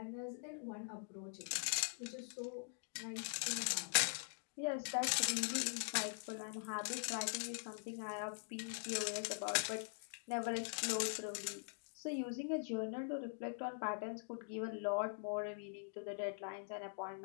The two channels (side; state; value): right; silent; digital silence